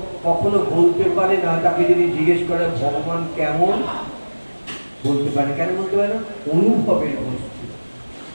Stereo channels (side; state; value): both; inverted; correlation -1.00